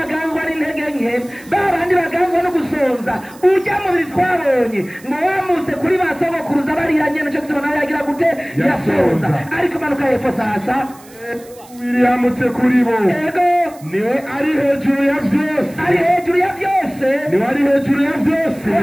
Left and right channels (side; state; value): right; noise; hiss, 24 dB below the sound